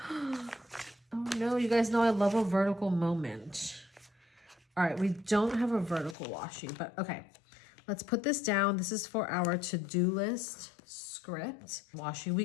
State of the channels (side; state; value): right; drops out; at 6.2 s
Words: Oh no, you guys know I love a vertical moment. All right, we don't have a vertical washi, but okay. Let's put this down. This is for our to-do list script. Washi. We